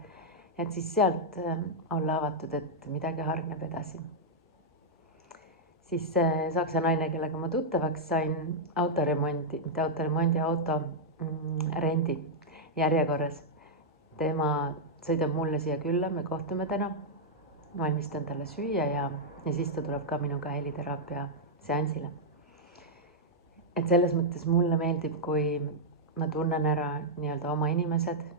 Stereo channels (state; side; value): normal; both; correlation -0.05